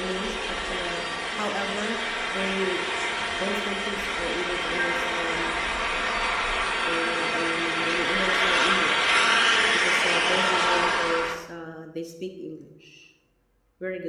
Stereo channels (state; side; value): identical; both; correlation 1.00